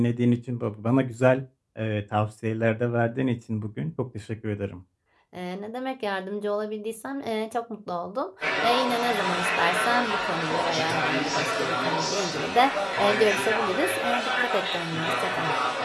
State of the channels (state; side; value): identical; both; correlation 1.00